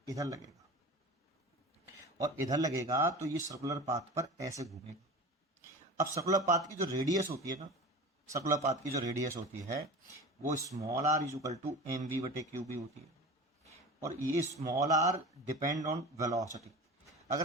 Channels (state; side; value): normal; both; correlation 0.34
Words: इधर लगेगा और इधर लगेगा, तो ये सर्कुलर पाथ पर ऐसे घूमेगा। अब सर्कुलर पाथ की जो रेडियस होती है ना, सर्कुलर पाथ की जो रेडियस होती है वो small r is equal to m v बटे क्यू बी होती है। और ये small r depend on velocity.